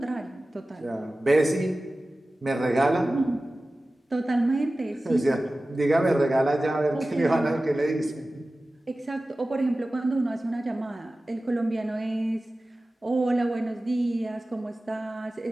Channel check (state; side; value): normal; both; correlation 0.96